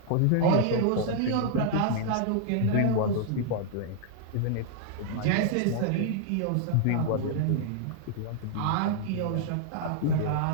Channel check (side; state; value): both; different; correlation -0.01